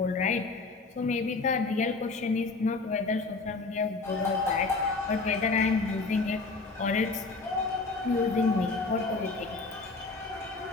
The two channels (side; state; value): right; quieter; 3.8 dB